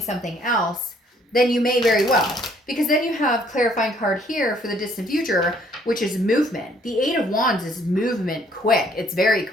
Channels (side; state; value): both; normal; correlation 0.63